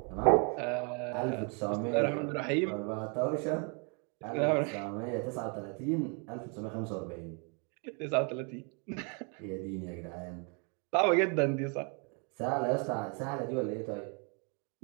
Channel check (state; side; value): quieter; left; 35.9 dB